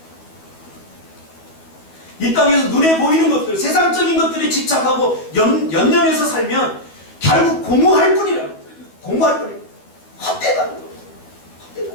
이 땅에서 눈에 보이는 것들, 세상적인 것들에 집착하고 연연해서 살면 결국 공허할 뿐이라는 거예요. 공허할 뿐이에요. 헛되다는 거예요. 헛되다.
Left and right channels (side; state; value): right; late; 12 ms